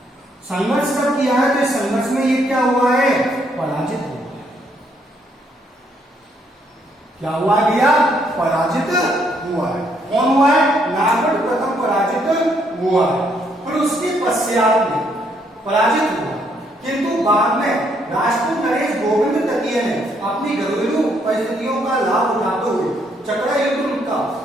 संघर्ष कब किया है, तो संघर्ष में ये क्या हुआ है, पराजित हुआ है। क्या हुआ भैया, पराजित हुआ है। कौन हुआ है, नागौर प्रथम पराजित हुआ है, फिर उसके पश्चात में पराजित हुआ, किंतु बाद में राजपूत नरेश गोविंद तृतीय ने अपनी घरेलू परिस्थितियों का लाभ उठाते हुए चकरा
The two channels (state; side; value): normal; both; correlation 0.71